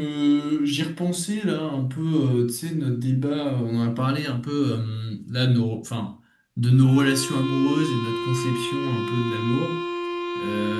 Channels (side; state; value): both; identical; correlation 1.00